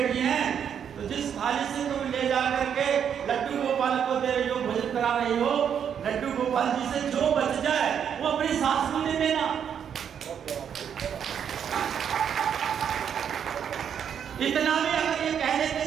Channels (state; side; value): quieter; left; 8.2 dB